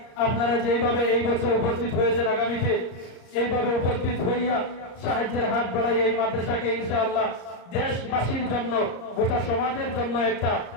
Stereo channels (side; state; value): right; late; 34 ms